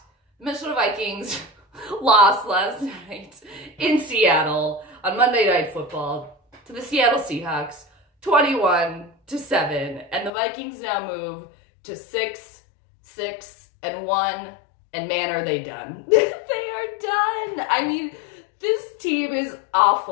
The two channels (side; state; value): right; drops out; at 10.3 s